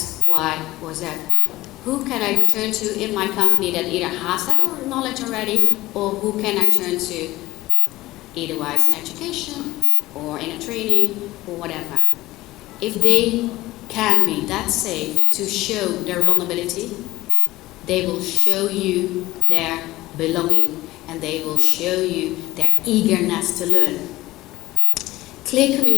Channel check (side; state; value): right; quieter; 17.8 dB